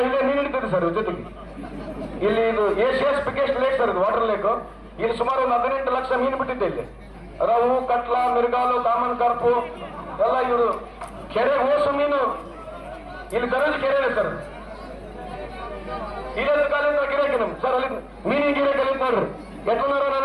ಇಲ್ಲೇ ನೀರು ಹಿಡಿತೀವಿ ಸರ್. ಜೊತೆಗೆ ಇಲ್ಲಿ ಇದು ಏಷಿಯಾಸ್ ಬಿಗ್ಗೆಸ್ಟ್ ಲೇಕ್ ಸರ್, ಇದು ವಾಟರ್ ಲೇಕ್. ಇಲ್ಲಿ ಸುಮಾರು ಒಂದು 18 ಲಕ್ಷ ಮೀನು ಬಿಟ್ಟಿದ್ದೆ. ಇಲ್ಲಿ ರವು, ಕಟ್ಲ, ಮಿರ್ಗಾಲು, ಕಾಮನ್ ಕಾರ್ಪು ಎಲ್ಲ ಇವರು ಕೆರೆ ಓಸು ಮೀನು ಇಲ್ಲಿ ದರಜ್ ಕೆರೆ ಇದೆ ಸರ್. ಇಲ್ಲದ ಕಾಲಿಂದ ಗಿರಾಕಿ ನಮ್ ಸರ್, ಅಲ್ಲಿ ಮೀನಿನ ಗಿರಾಕಿ ಅಲ್ಲಿ ನೋಡ್ರಿ ಎಟ್ಟನಾರ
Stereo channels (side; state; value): both; identical; correlation 1.00